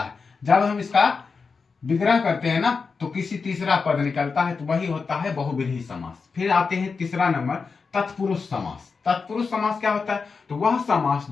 जब हम इसका विग्रह करते हैं ना तो किसी तीसरा पद निकलता है, तो वही होता है बहुव्रीहि समास। फिर आते हैं तीसरा नंबर, तत्पुरुष समास। तत्पुरुष समास क्या होता है? तो वह समास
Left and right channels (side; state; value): right; quieter; 4.9 dB